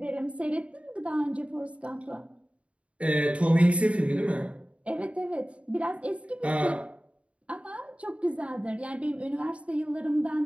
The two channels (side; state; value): left; late; 0.062 ms